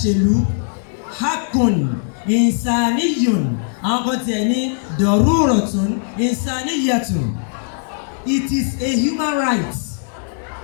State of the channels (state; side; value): silent; right; digital silence